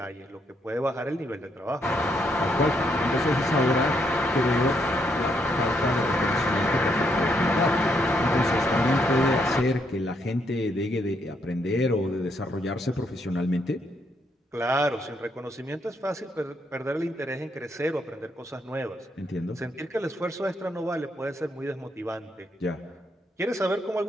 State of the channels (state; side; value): normal; both; correlation 0.75